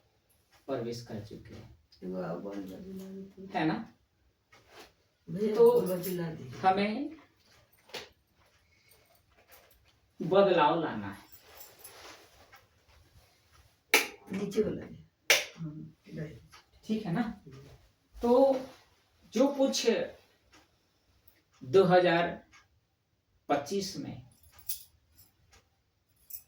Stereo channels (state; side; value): identical; both; correlation 1.00